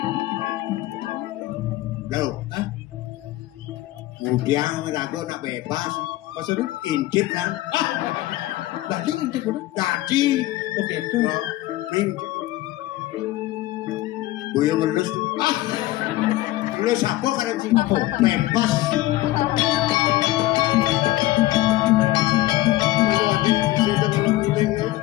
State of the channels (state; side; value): quieter; right; 16.9 dB